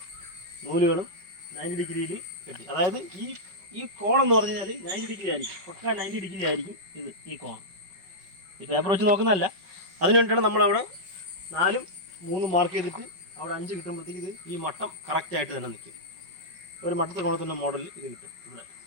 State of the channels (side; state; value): left; late; 5.3 ms